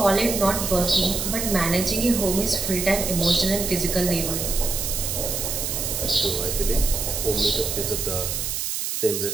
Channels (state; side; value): noise; right; hiss, 2 dB below the sound